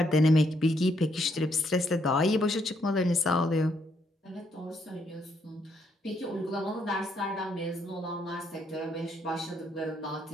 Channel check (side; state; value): both; normal; correlation 0.74